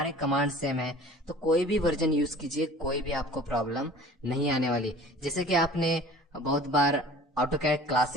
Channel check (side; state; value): both; normal; correlation 0.45